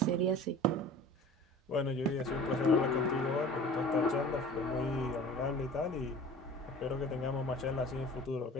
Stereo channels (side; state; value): both; normal; correlation 0.41